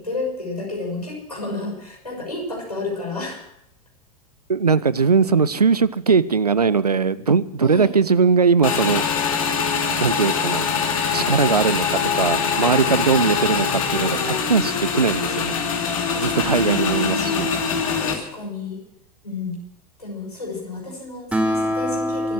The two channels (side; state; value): both; normal; correlation -0.19